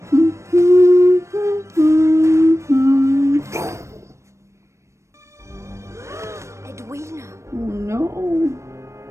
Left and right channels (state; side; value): late; left; 0.14 ms